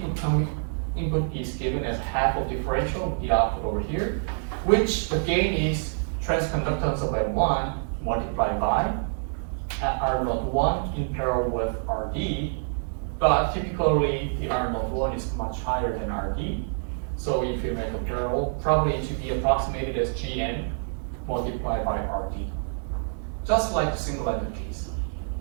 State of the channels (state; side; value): silent; left; digital silence